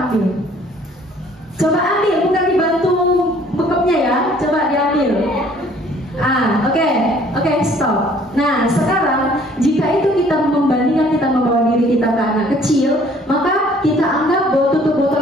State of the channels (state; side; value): normal; both; correlation 0.57